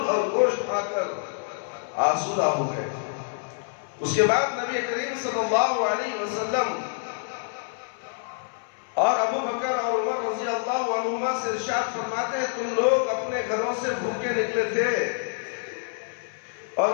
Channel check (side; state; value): right; silent; 60 dB below the other